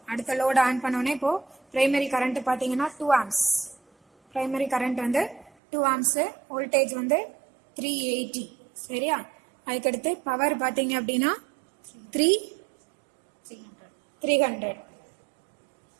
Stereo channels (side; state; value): left; drops out; at 5.5 s